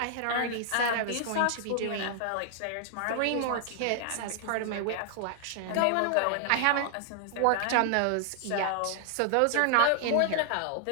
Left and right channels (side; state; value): both; different; correlation 0.00